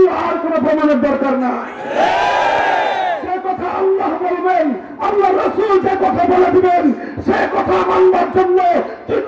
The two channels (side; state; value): both; identical; correlation 1.00